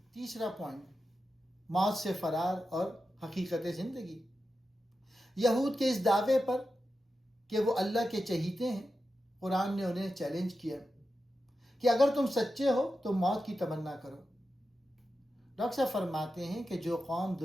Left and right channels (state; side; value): normal; both; correlation 0.90